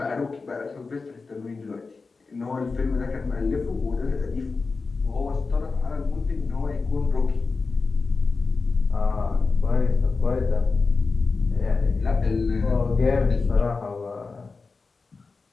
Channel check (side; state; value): right; quieter; 4.2 dB